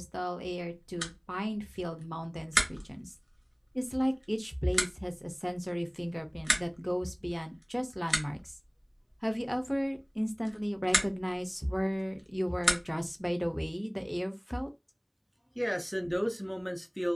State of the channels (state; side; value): identical; both; correlation 1.00